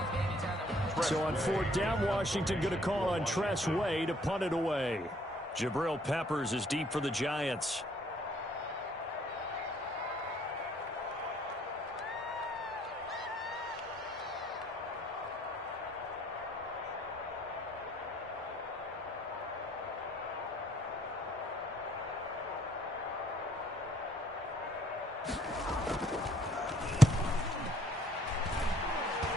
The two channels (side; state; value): both; normal; correlation 0.63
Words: So on 4th down, Washington going to call on Tress Way to punt it away. Jabril Peppers is deep for the Giants.